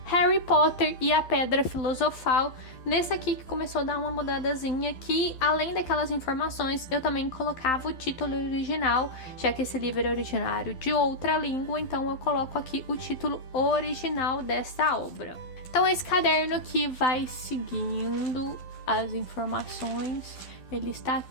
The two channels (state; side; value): late; right; 12 ms